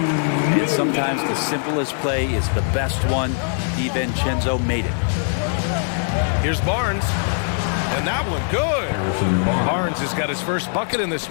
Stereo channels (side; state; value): right; silent; 64 dB below the other